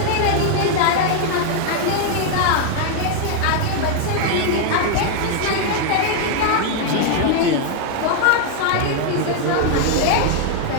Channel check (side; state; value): both; different; correlation 0.00